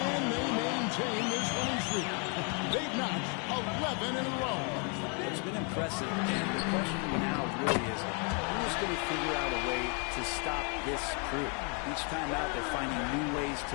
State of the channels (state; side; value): quieter; right; 36.6 dB